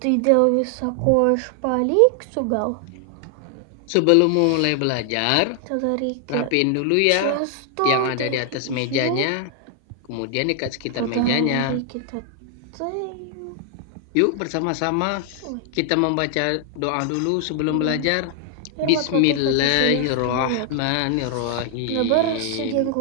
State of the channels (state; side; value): different; both; correlation 0.00